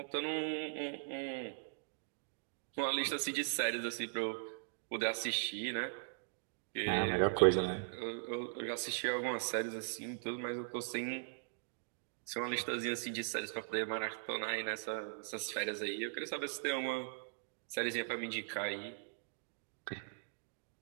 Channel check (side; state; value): left; silent; digital silence